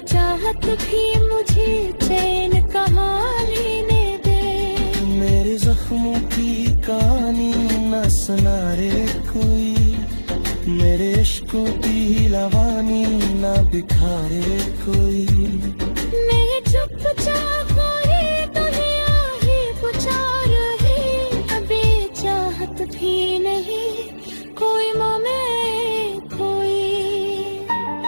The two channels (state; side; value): inverted; both; correlation -1.00